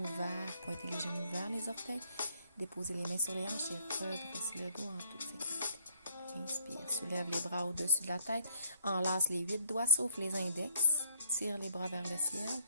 vers, pointez les genoux vers les orteils, déposez les mains sur les hanches et redressez le dos en toute sécurité. Inspire, soulève les bras au-dessus de la tête, enlace les 8 doigts sauf les index, tire les bras vers le ciel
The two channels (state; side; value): inverted; both; correlation -0.67